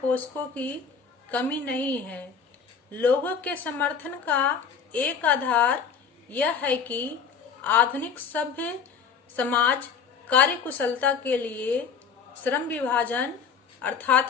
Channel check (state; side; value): quieter; right; 6.3 dB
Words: की कमी नहीं है। लोगों के समर्थन का एक आधार यह है कि आधुनिक सभ्य समाज कार्यकुशलता के लिए श्रम विभाजन अर्थात